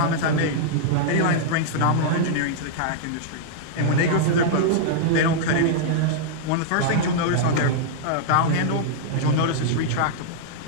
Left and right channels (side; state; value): both; different; correlation -0.01